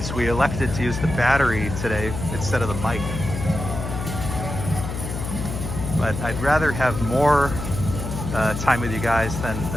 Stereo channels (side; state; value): left; noise; hum, 5 dB below the sound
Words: we elected to use the battery today instead of the mic. But I'd rather have more time with you guys